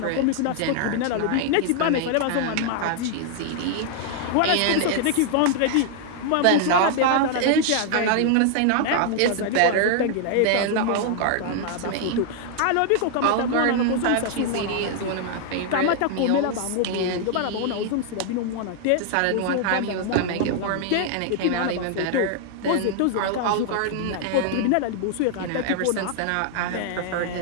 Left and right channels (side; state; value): both; different; correlation 0.00